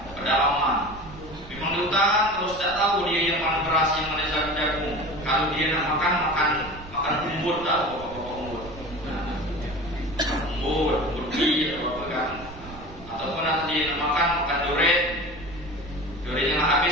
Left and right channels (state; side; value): noise; right; rumble, 16 dB below the sound